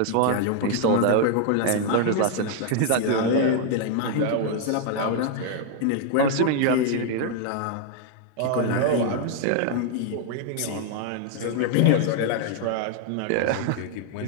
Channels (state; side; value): different; both; correlation 0.00